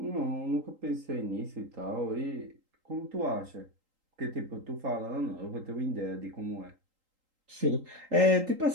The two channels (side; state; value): left; late; 3.8 ms